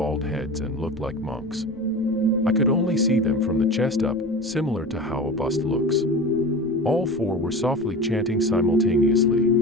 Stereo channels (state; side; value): noise; right; rumble, 22 dB below the sound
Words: heads and looked like monks. I could only see them from the chest up, similar to how a bust looks. All four were softly chanting simultaneously.